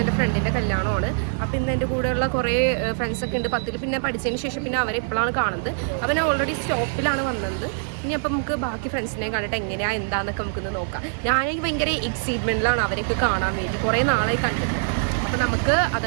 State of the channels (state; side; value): silent; left; digital silence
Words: എൻ്റെ ഫ്രണ്ടിൻ്റെ കല്യാണമാണ്. അപ്പോൾ ഇന്ന് എൻ്റെ കൂടെയുള്ള കുറേ ഫ്രണ്ട്സൊക്കെ ഉണ്ട് 10ൽ. പിന്നെ പഠിച്ചതിന് ശേഷം പിന്നെ അവരെ ഇപ്പോഴാണ് കാണുന്നത്. അപ്പോൾ ഞാൻ ഓൾറെഡി സ്റ്റോപ്പിലാണ് വന്നത്. ഇനി അപ്പം നമുക്ക് ബാക്കി ഫ്രണ്ട്സിനെ കണ്ടിട്ട് എങ്ങനെയാണ് എന്താണെന്നൊക്കെ നമുക്കൊന്ന് നോക്കാം. ഞാനെനിക്ക് ഭയങ്കര എക്സൈറ്റ്മെൻറ്റിലാണ് അവരെയൊക്കെ കാണാൻ വേണ്ടി. കുറേ നാളായി കണ്ടിട്ട്. അപ്പോൾ നമുക്ക്